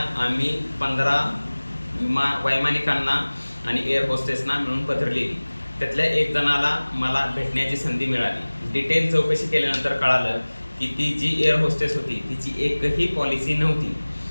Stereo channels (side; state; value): both; inverted; correlation -1.00